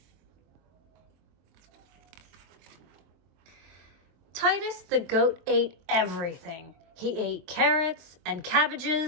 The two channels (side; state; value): left; late; 23 ms